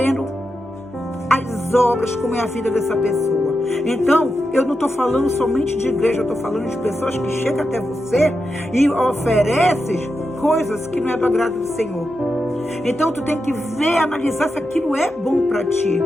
as obras, como é a vida dessa pessoa. Então, eu não estou falando somente de igreja, eu estou falando de pessoas que chegam até você e oferecem coisas que não é do agrado do Senhor. Então, tu tem que ver, analisar se aquilo é bom para ti.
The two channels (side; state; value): both; normal; correlation 0.88